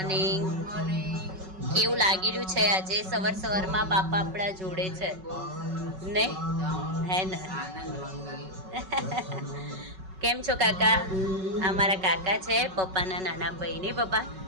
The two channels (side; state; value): left; late; 5.3 ms